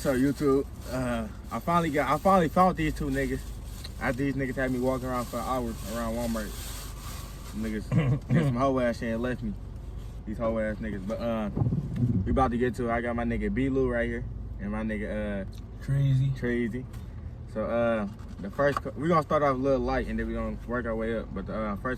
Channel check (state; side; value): identical; both; correlation 1.00